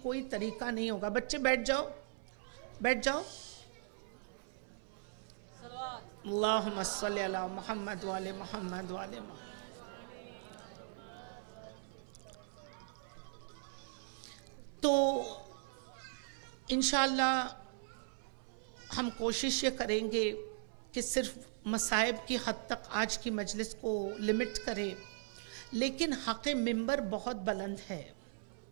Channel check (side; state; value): left; silent; 52 dB below the other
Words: کوئی طریقہ نہیں ہوگا. بچے بیٹھ جاؤ، بیٹھ جاؤ. اللہم صلی علی محمد وعلی محمد وعلی محمد. تو انشاءاللہ ہم کوشش یہ کریں گے کہ صرف مصائب کی حد تک آج کی مجلس کو لمٹ کریں، لیکن حق ممبر بہت بلند ہے.